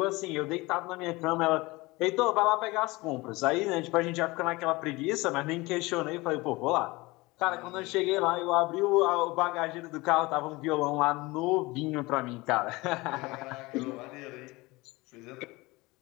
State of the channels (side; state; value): right; quieter; 22.2 dB